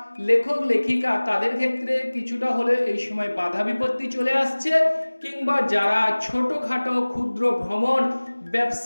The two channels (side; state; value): both; inverted; correlation -1.00